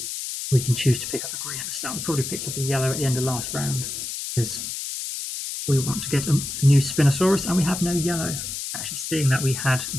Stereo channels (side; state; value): left; noise; hiss, 5 dB below the sound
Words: can choose to pick up a green at the start. We probably picked up a yellow at the end of last round, because we want to get a new Spinosaurus, and we have no yellow. Actually, seeing that we had